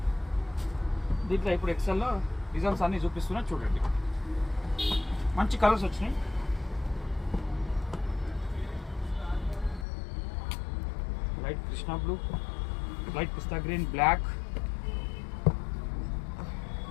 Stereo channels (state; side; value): drops out; right; at 9.9 s